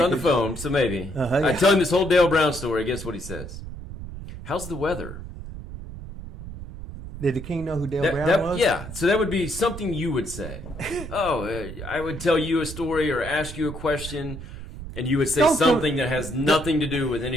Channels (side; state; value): right; noise; rumble, 11 dB below the sound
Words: on the phone, so maybe. I tell him this whole Dale Brown story. Guess what he says? How's the weather? Did the king know who Dale Brown was? Yeah, so that would be something you would say. I would tell you a story or ask you a question, and you would say something that has nothing to do with